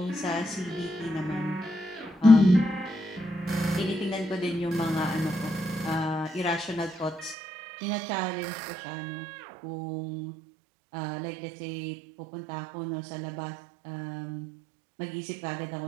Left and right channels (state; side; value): drops out; left; at 7.4 s